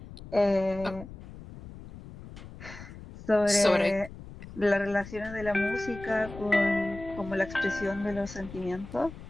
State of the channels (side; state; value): left; noise; rumble, 15 dB below the sound